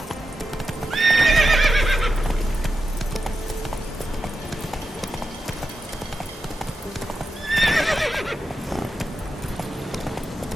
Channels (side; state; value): both; normal; correlation 0.89